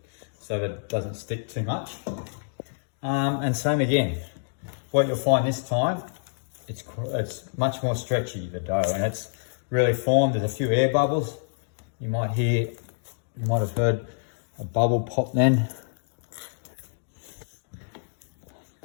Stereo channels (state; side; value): silent; right; digital silence